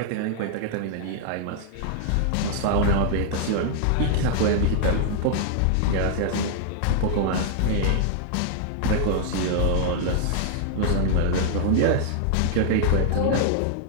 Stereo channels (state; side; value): different; both; correlation -0.01